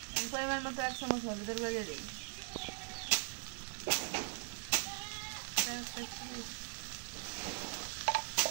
পরিমাণ মতো 1 চামচ হলুদের গুঁড়ো দিয়ে দিই।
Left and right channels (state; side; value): silent; left; 51 dB below the other